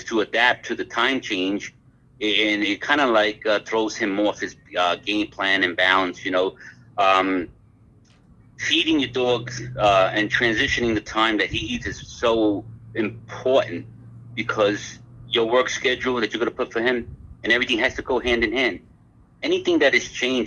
to adapt to the time change. and it kind of like throws him off his game plan and balance. Um, Feeding your dog and transitioning the time that he eats is so important because your work schedule that you're going to put for him and everything has to go hand in hand. Anything that is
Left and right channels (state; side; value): identical; both; correlation 1.00